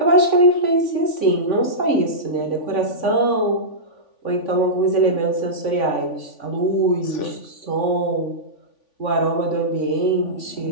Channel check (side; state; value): right; late; 3.5 ms